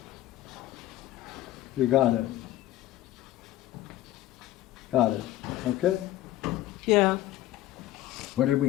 You got it. Got it. Okay. Yeah. What did we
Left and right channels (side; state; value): right; quieter; 14.7 dB